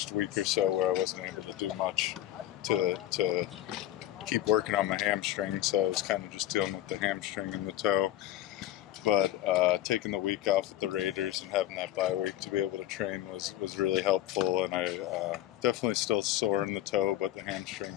week or so where I wasn't able to do much to keep working on my hamstring, so I was kind of just dealing with the hamstring and the toe. But taking the week off with the Raiders and having that bye week to be able to train was really helpful, and I definitely still sore in the toe, but the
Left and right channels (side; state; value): right; quieter; 13.5 dB